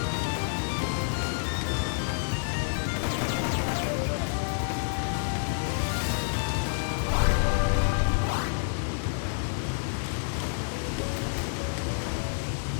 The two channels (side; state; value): right; silent; digital silence